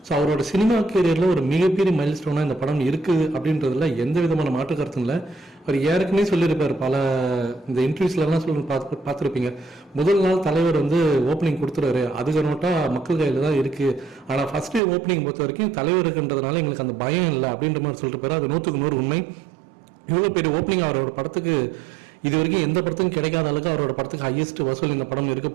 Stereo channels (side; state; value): left; drops out; at 14.8 s